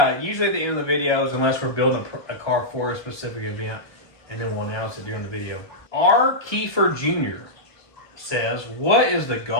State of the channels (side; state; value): right; late; 1.2 ms